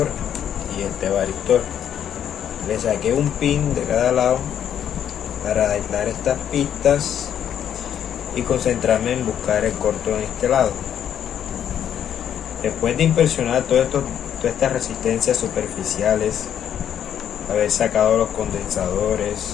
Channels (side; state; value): right; quieter; 9.5 dB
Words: y este varistor. Le saqué un pin de cada lado para aislar estas pistas y concentrarme en buscar el corto en este lado. Después de inspeccionar todas estas resistencias superficiales, haber sacado los condensadores,